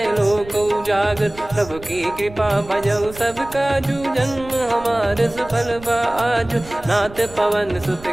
उजागर। प्रभु की कृपा भजऊ सब काजू, जन्म हमार सफल बा आजु। नाथ पवन सुत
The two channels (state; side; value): noise; right; rumble, 18 dB below the sound